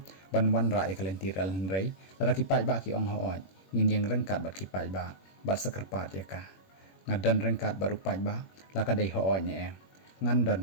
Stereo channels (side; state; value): right; late; 21 ms